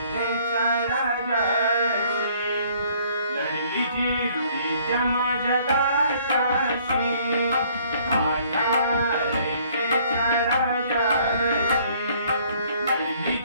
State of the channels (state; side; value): inverted; both; correlation -0.60